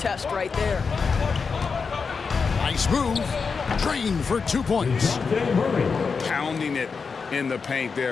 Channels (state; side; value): quieter; right; 5.2 dB